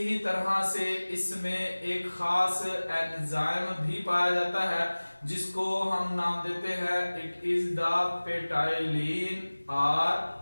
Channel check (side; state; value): both; inverted; correlation -1.00